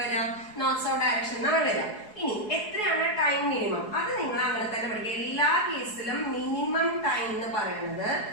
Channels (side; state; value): right; late; 4.7 ms